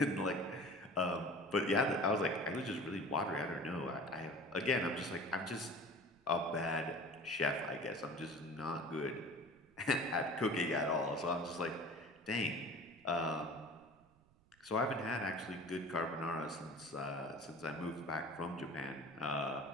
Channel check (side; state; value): right; noise; rumble, 29 dB below the sound